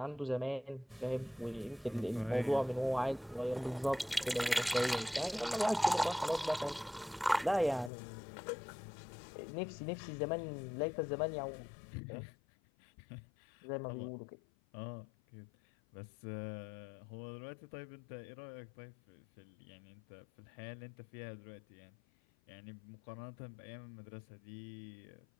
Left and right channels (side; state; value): right; drops out; at 7.9 s